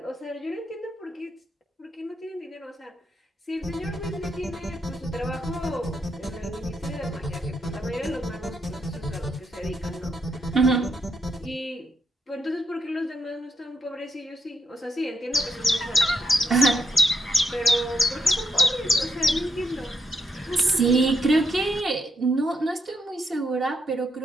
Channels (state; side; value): normal; both; correlation 0.79